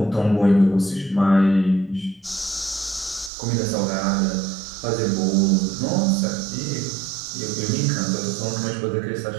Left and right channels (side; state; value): left; drops out; at 3.3 s